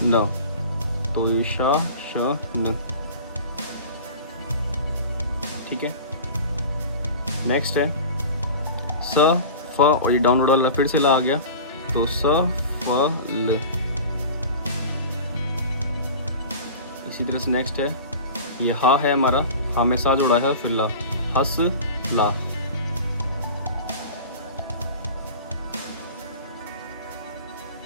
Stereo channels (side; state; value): both; inverted; correlation -0.36